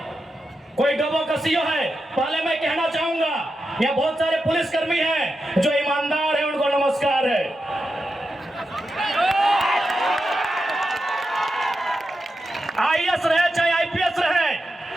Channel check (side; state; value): both; normal; correlation 0.88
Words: कोई डोबो का सीओ है, पहले मैं कहना चाहूंगा यहाँ बहुत सारे पुलिसकर्मी हैं जो ईमानदार हैं, उनको नमस्कार है। आईएएस रहे चाहे आईपीएस रहे,